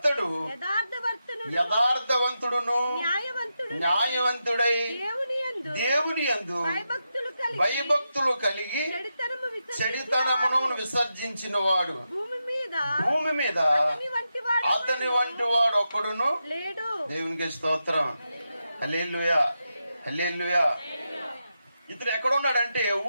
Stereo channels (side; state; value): both; inverted; correlation -0.87